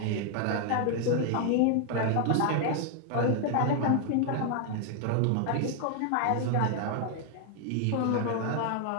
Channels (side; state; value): both; different; correlation 0.00